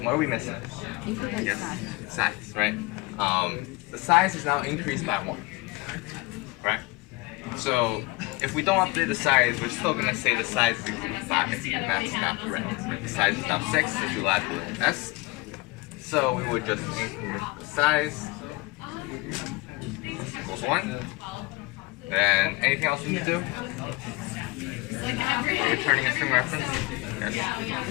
What are we missing? Yes, size, right? The size is now increased by 1, right? So if we don't update the size, we're still going to say the size is equal to 5, and that's not correct. Right? The size is now 6, so we add the S. So we would just increase the size equals 1. Then anything else we need to do? Returning a string reference? Yes.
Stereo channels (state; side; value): quieter; right; 23.3 dB